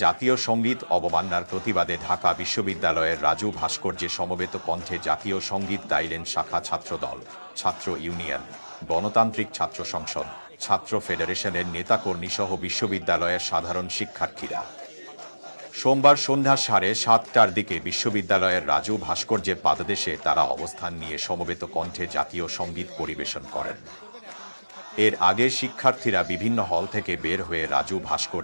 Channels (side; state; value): both; inverted; correlation -1.00